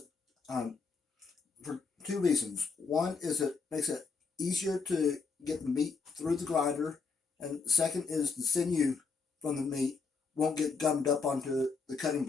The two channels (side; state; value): right; quieter; 4.8 dB